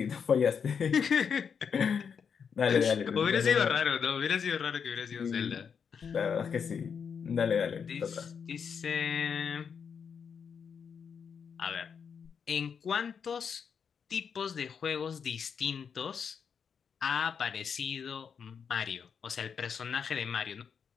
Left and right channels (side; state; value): right; quieter; 6.7 dB